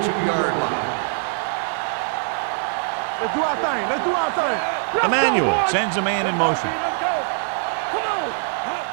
line. Let's do our thing. Let's do our thing. Let's Emmanuel go, boys. sends a man in motion. Let's go. Come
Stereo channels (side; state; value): left; silent; digital silence